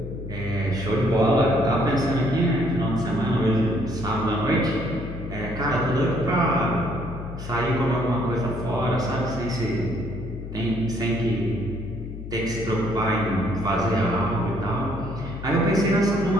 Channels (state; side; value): noise; left; hum, 10 dB below the sound